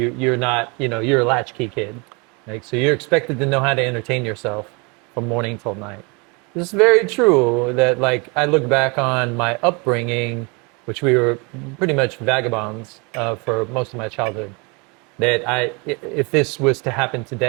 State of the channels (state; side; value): quieter; left; 30.2 dB